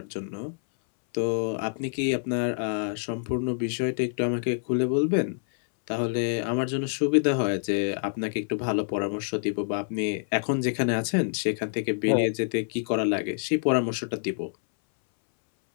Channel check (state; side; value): silent; right; 60 dB below the other